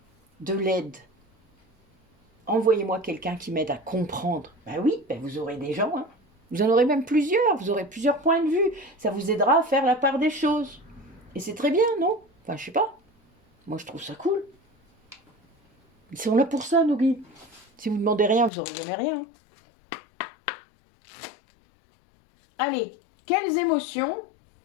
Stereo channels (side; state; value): right; drops out; at 18.5 s